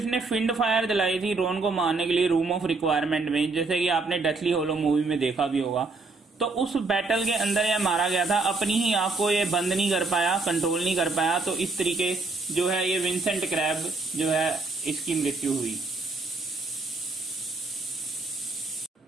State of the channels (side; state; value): left; quieter; 3.7 dB